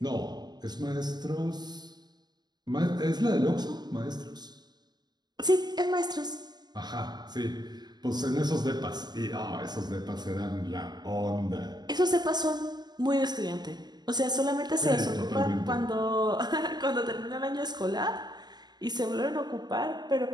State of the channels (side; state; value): left; late; 0.20 ms